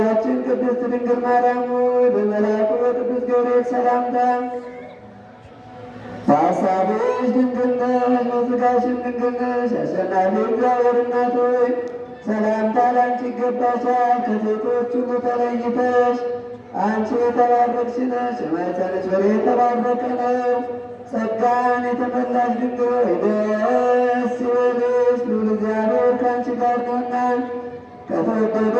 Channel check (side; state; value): both; identical; correlation 1.00